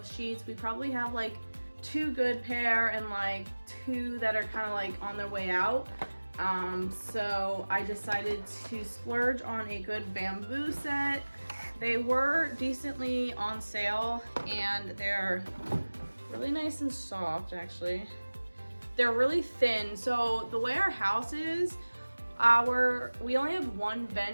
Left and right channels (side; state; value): both; inverted; correlation -1.00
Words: sheets. We probably have like 2 good pair and like 2 that are kind of like on their way out. So I decided to splurge on a good bamboo set. They were decently on sale and they're really nice and soft actually. They're really thin. So the way our house is, we only have one